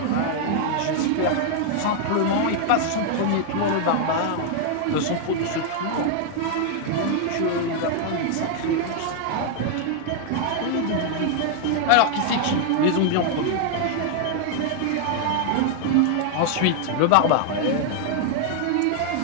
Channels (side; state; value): both; different; correlation 0.00